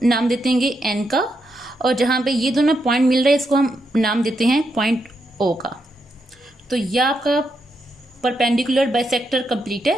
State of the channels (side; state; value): both; normal; correlation 0.82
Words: नाम देते हैं एन का, और जहाँ पे ये दोनों पॉइंट मिल रहे हैं इसको हम नाम देते हैं पॉइंट ओ का। तो यह आपका परपेंडिकुलर बाइसेक्टर कंप्लीट